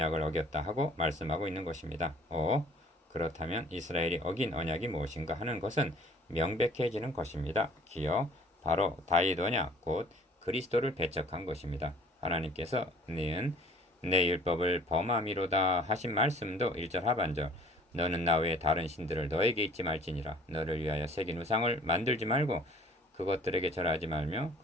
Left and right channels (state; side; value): normal; both; correlation 0.53